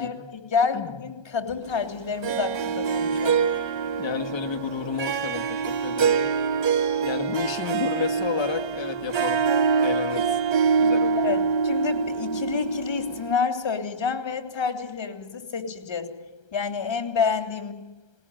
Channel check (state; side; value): late; right; 1.3 ms